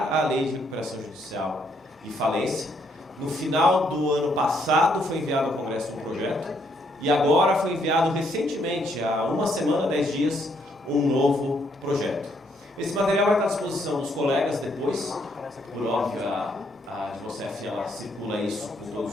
a lei de recuperação judicial e falência. No final do ano passado foi enviado ao Congresso um projeto e agora foi enviado recentemente, há uma semana, 10 dias, um novo projeto. Esse material vai estar à disposição dos colegas depois, por óbvio, a Advocef ela circula isso com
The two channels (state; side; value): normal; both; correlation 0.72